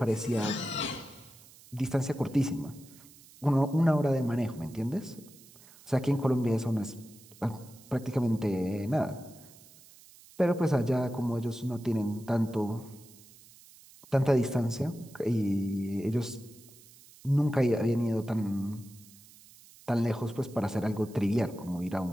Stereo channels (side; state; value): right; noise; hiss, 23 dB below the sound